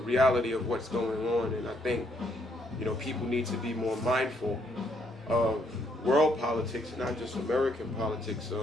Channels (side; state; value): both; normal; correlation 0.72